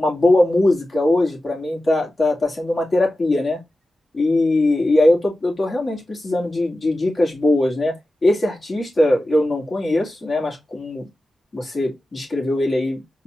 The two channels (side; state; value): both; normal; correlation 0.94